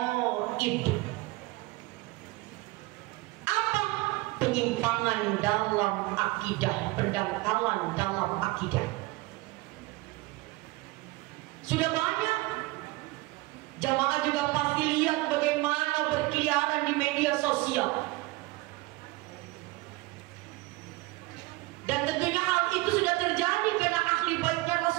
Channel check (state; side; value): quieter; left; 21.5 dB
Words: Apa? Penyimpangan dalam akidah, pendangkalan dalam akidah. Sudah banyak. Jamaah juga pasti lihat bagaimana berkeliaran di media sosial. Dan tentunya hal itu sudah terjadi karena ahli baitnya